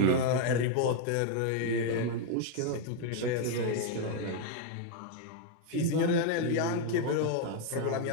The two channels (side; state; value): both; different; correlation 0.01